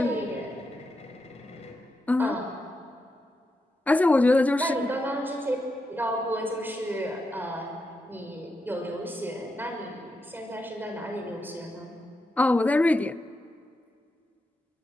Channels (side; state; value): both; normal; correlation 0.86